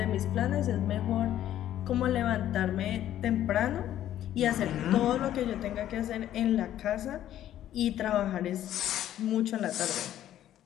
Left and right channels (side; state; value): right; quieter; 12.0 dB